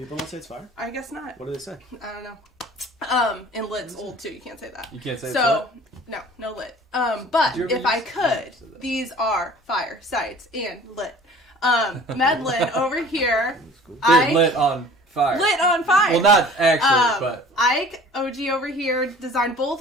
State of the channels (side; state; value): both; normal; correlation 0.47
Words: don't say it's fire. I guess not. What do they say? I don't know. And lit's old too. You can't say that. You can't say so. No lit. But Did you ever if I use- could, these are fire sites and lit. Medlin over here. They're lit on fire. Lit on fire. Well, not actually, but Ike OG over here designed both